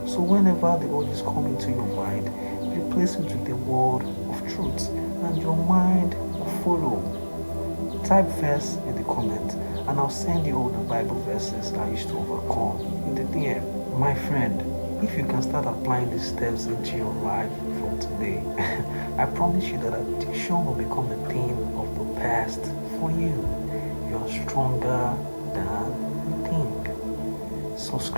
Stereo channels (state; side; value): inverted; both; correlation -1.00